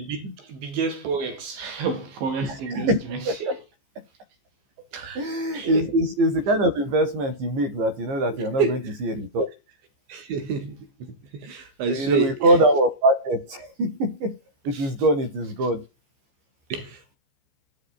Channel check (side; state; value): left; late; 15 ms